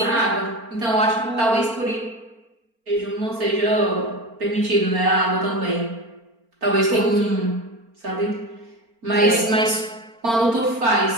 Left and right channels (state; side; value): late; left; 4.4 ms